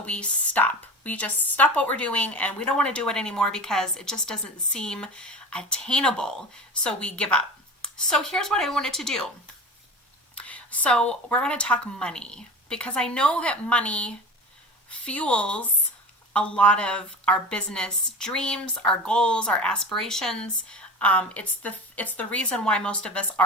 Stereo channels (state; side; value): normal; both; correlation 0.32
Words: we stop. We just stop what we're doing, and we don't want to do it anymore because it just doesn't seem attainable. So we give up. So here's what I wanted to do. So we're going to talk money, because I know that money fuels a lot of our business dreams, our goals, our aspirations. It's the reason why most of us